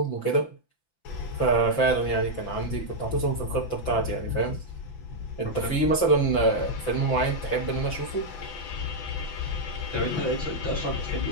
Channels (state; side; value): late; right; 5.9 ms